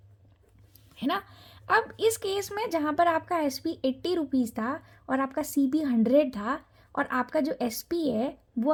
है ना। अब इस केस में जहाँ पर आपका एस पी 80 रुपीज़ था और आपका सी पी 100 था, और आपका जो एस पी है वो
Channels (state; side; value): identical; both; correlation 1.00